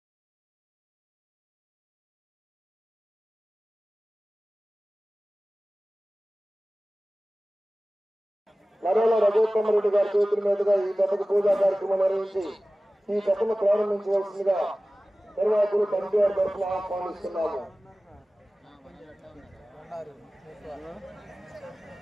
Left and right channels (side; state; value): both; normal; correlation 0.97